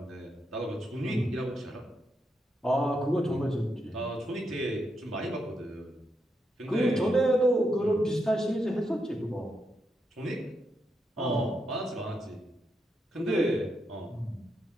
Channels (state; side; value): normal; both; correlation 0.82